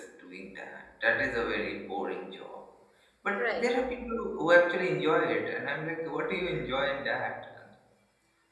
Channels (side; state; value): both; identical; correlation 1.00